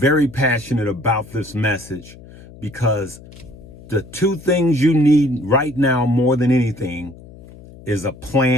passionate about this message because the two things you need right now more than anything is a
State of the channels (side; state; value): left; noise; hum, 20 dB below the sound